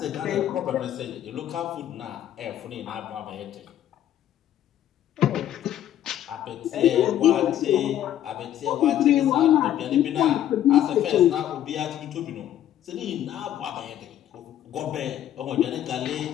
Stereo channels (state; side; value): quieter; right; 11.4 dB